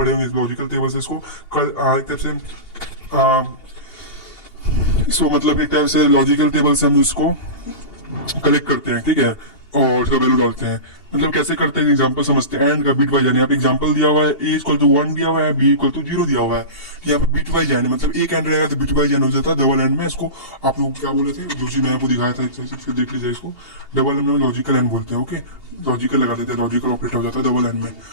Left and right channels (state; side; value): late; right; 2.8 ms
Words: होंगे, लॉजिकल टेबल से इसको एक टाइप से इसको मतलब एक टाइप से लॉजिकल टेबल से हम इसको कलेक्ट करते हैं, ठीक है, और उसका वैल्यू डालते हैं। मतलब कैसे करते हैं, एग्जांपल समझते हैं। एंड का बिट वाइज, यहाँ पे एग्जांपल दिया हुआ है, a इक्वल टू 1 दिया हुआ है, b इक्वल टू 0 दिया हुआ है। यहाँ पे बिट वाइज एंड, मतलब एक एंड रहेगा तो बिट वाइज एंड हो जाता है। डबल एंड में इसको आप लोग क्या बोले थे, जो चीज मैंने आपको दिखाया था, फिर देख लीजिए इसको। डबल एंड में लॉजिकल एंड बोलते हैं, ओके, लॉजिकल लगा देते हैं, लॉजिकल ऑपरेटर हो जाता है डबल एंड में,